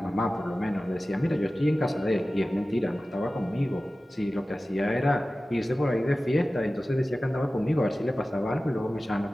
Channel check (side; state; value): both; normal; correlation 0.96